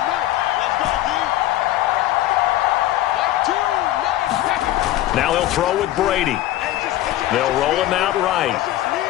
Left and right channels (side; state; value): right; quieter; 14.6 dB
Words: Now he'll throw with Brady. They'll roll him out right.